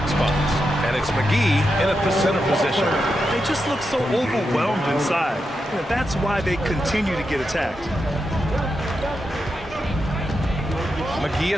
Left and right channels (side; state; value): both; normal; correlation 0.86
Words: spots. And it's McGee in at the center position. They just look so overwhelmed inside. That's why they continue to get attacked. McGee a